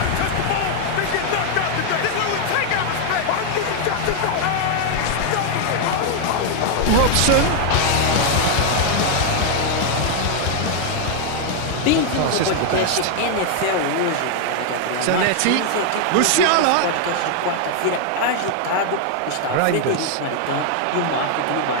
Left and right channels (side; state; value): both; different; correlation 0.00